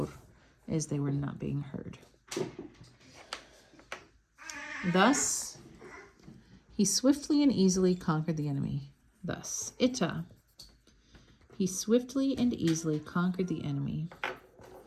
is they were not being heard. Thus, he swiftly and easily conquered the enemy. Thus, ita. He swiftly and easily conquered the enemy.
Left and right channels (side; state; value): both; identical; correlation 1.00